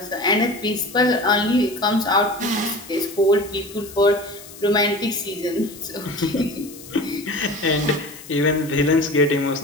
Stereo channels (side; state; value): left; noise; hiss, 17 dB below the sound